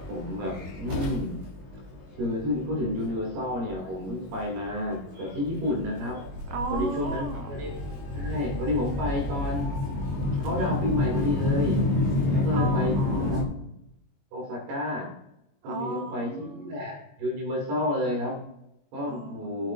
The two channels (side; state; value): left; late; 21 ms